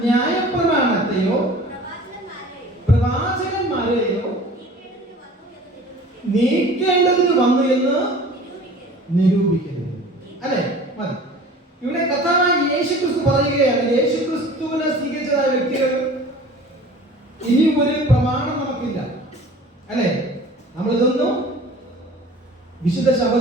ന്യായപ്രമാണത്തെയോ പ്രവാചകന്മാരെയോ നീക്കേണ്ടതിന് വന്നു എന്ന് നിരൂപിക്കരുത് അല്ലെ? മതി. ഇവിടെ കർത്താവായ യേശു ക്രിസ്തു പറയുകയാണ്, യേശു ക്രിസ്തുവിനെ സ്വീകരിച്ചതായ വ്യക്തികൾ ഇനി ഒരു പ്രമാണം നമുക്കില്ല അല്ലെ? നമ്മൾ ഇതൊന്നും വിശുദ്ധ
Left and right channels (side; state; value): both; normal; correlation 0.44